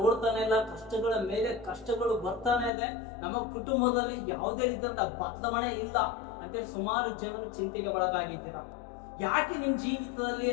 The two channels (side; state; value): right; drops out; at 2.7 s